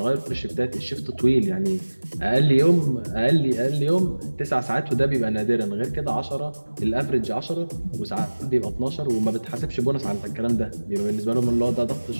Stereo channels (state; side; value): inverted; both; correlation -1.00